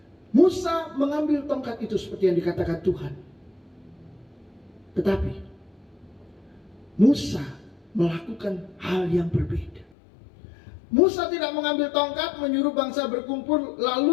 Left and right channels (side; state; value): right; drops out; at 9.9 s